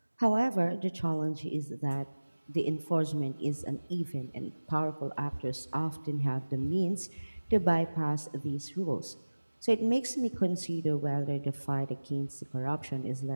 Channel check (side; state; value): both; inverted; correlation -1.00